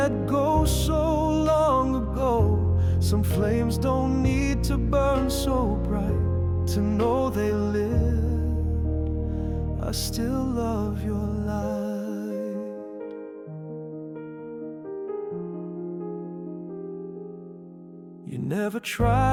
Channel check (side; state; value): both; identical; correlation 1.00